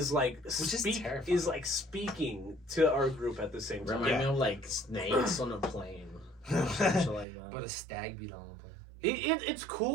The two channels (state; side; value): drops out; left; at 7.2 s